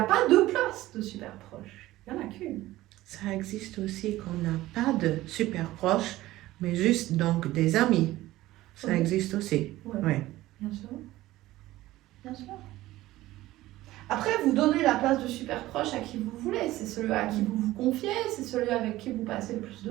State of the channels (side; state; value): left; quieter; 16.5 dB